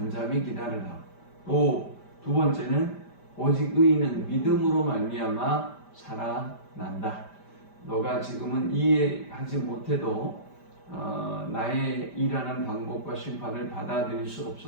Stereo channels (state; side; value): late; right; 5.1 ms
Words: 기다려라. 또 두 번째는 오직 의인은 믿음으로 말미암아 살아난다. 너가 지금은 이해하지 못해도 나의 일하는 방법과 심판을 받아들일 수